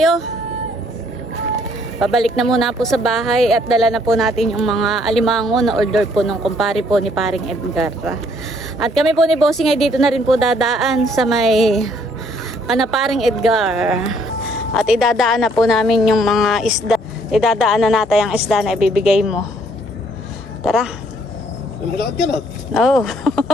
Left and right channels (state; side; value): normal; both; correlation 0.65